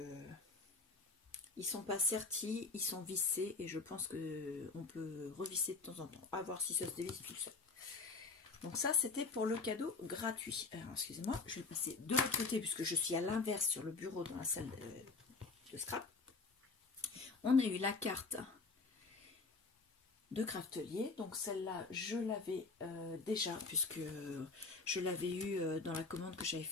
ils sont pas sertis, ils sont vissés. Et je pense qu'on peut revisser de temps en temps. À voir si ça se dévisse tout seul. Donc ça, c'était pour le cadeau gratuit. Alors, excusez-moi, je vais le passer de l'autre côté puisque je suis à l'inverse sur le bureau dans la salle de scrap. On a eu la carte de Craftelier, donc celle-là je l'avais déjà puisque je l'avais eu dans la commande que j'avais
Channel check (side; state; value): right; quieter; 4.0 dB